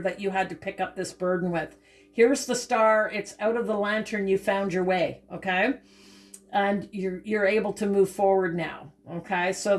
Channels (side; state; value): both; identical; correlation 1.00